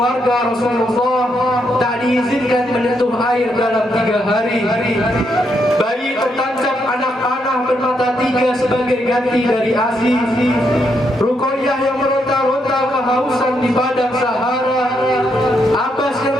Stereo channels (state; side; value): normal; both; correlation 0.78